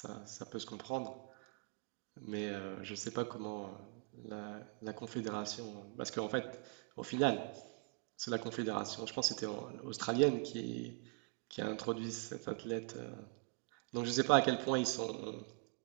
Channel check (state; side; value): quieter; left; 37.9 dB